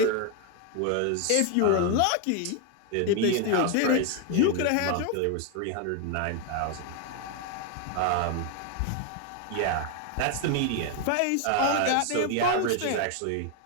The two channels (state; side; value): different; both; correlation 0.01